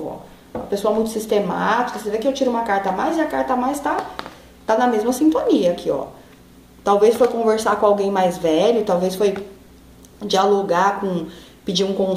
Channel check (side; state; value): both; identical; correlation 1.00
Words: ó. Uma pessoa muito sistemática. Você vê que eu tiro uma carta a mais e a carta a mais tá na mesma sintonia aqui, ó. Talvez foi conversar com alguém mais velho, talvez foi dialogar pedir um